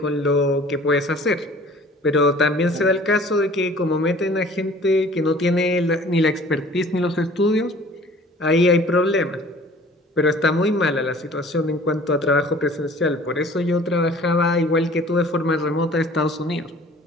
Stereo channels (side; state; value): both; normal; correlation 0.49